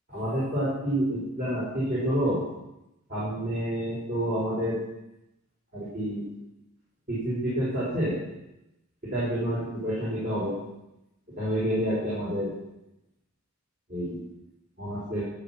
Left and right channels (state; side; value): normal; both; correlation 0.52